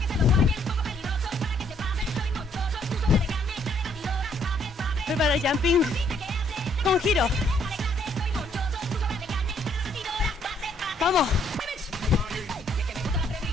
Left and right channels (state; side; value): normal; both; correlation 0.68